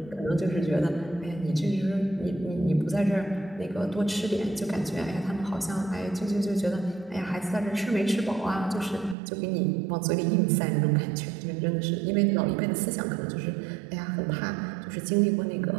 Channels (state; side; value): drops out; left; at 9.2 s